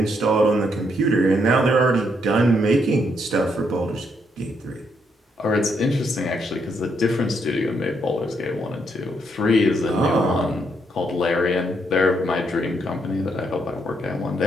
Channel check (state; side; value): normal; both; correlation 0.75